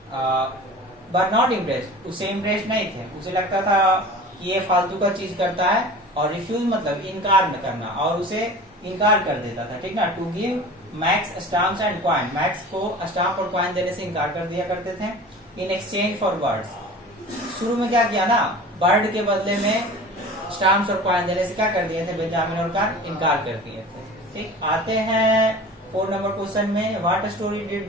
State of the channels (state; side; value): normal; both; correlation 0.39